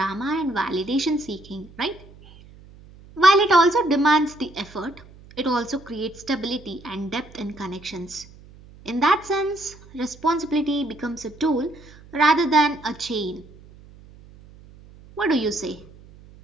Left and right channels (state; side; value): noise; right; hum, 22 dB below the sound